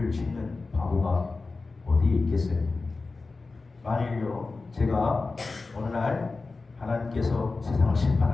짓는 바보가 어디에 있겠어요? 만일요 제가 어느 날 하나님께서 세상을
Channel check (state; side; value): quieter; right; 3.8 dB